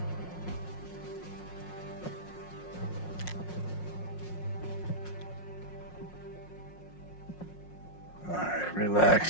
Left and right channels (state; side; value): late; right; 5.5 ms